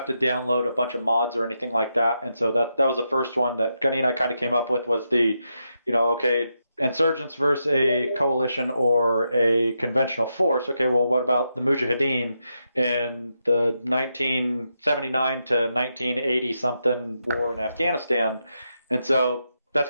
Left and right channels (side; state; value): both; inverted; correlation -0.84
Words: to download a bunch of mods or anything like that. And so that was the first one that Gunny and I kind of came up with was the, okay, insurgents versus a coalition or a conventional force. Okay, well, what about the Mujahideen in the 1979 to 1980 something war in Afghanistan? And so that's